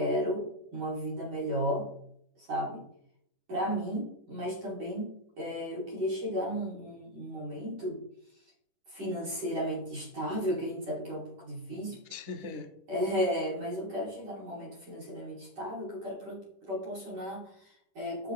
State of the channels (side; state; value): left; late; 10 ms